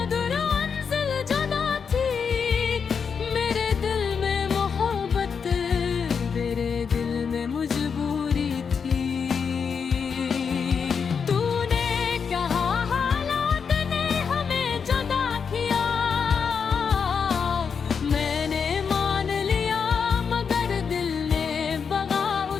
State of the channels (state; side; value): quieter; right; 6.2 dB